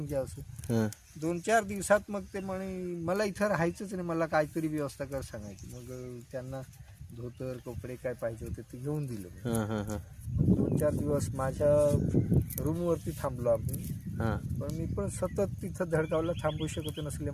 घ्या असं. हां 2-4 दिवसात मग ते म्हणे मला इथं राहायचंच नाही, मला काहीतरी व्यवस्था कर सांगायची. मग त्यांना धोतर कपडे काय पाहिजे होते ते घेऊन दिलं. हां हां हां 2-4 दिवस माझ्या रूमवरती थांबलो आम्ही. हां पण मी पण सतत तिथं धडगावला थांबू शकत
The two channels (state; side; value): identical; both; correlation 1.00